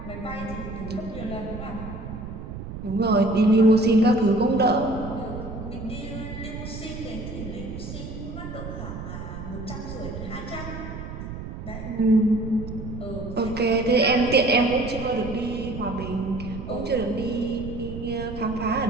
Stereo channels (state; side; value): noise; right; rumble, 9 dB below the sound